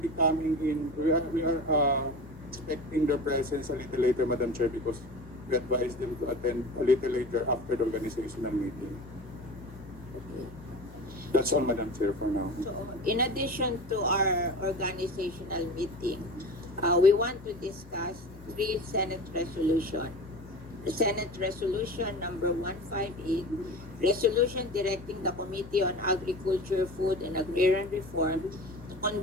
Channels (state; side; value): normal; both; correlation 0.33